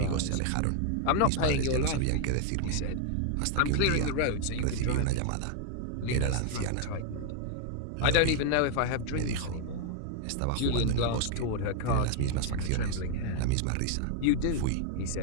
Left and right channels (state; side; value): different; both; correlation 0.00